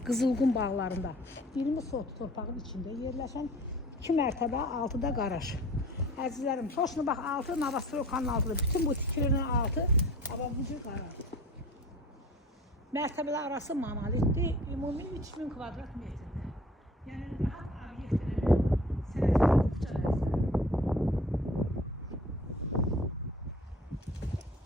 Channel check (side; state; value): both; normal; correlation 0.46